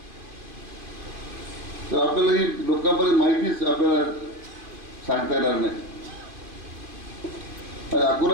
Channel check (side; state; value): left; late; 2.4 ms